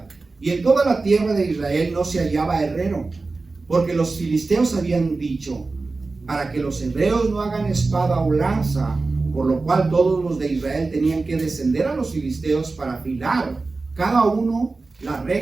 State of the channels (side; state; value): left; quieter; 3.7 dB